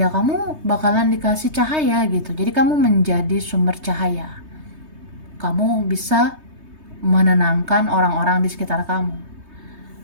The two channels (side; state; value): left; late; 3.2 ms